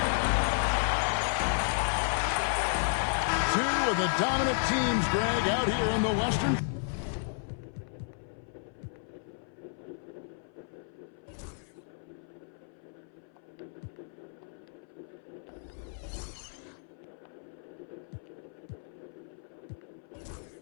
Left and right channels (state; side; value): silent; right; 56 dB below the other